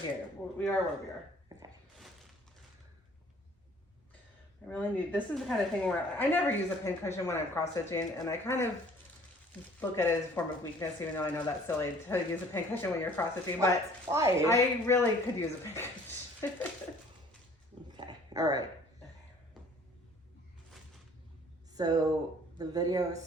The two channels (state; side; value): normal; both; correlation 0.54